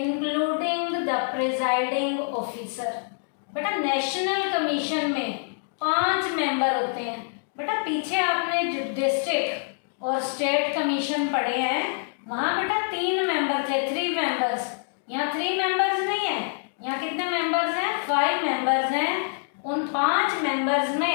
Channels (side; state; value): right; silent; digital silence